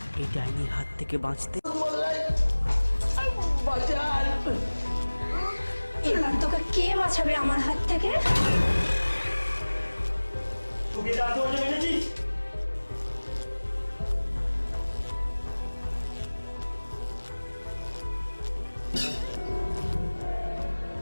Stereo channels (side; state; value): both; inverted; correlation -1.00